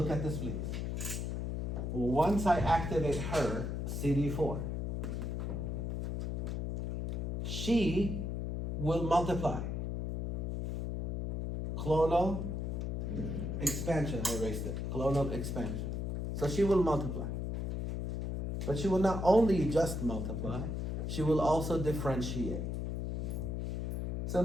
at this, please. Once I activate her, CD4, she will multiply clonal expansion. I erased it. Clonal expansion. So she will multiply. But she will not only just multiply, she will also differentiate. So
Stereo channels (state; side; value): noise; left; hum, 2 dB below the sound